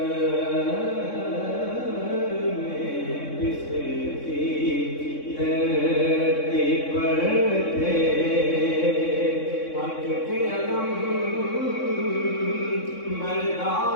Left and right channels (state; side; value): late; right; 3.6 ms